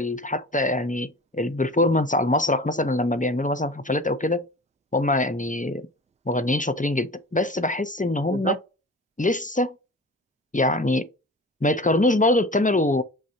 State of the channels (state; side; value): normal; both; correlation 0.38